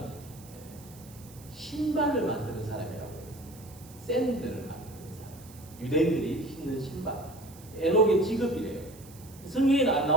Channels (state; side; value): noise; right; hiss, 21 dB below the sound